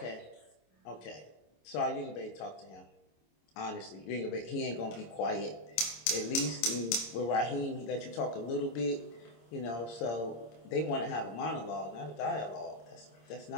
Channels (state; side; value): late; right; 26 ms